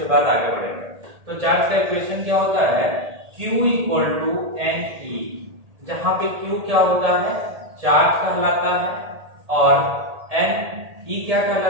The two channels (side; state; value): left; late; 1.8 ms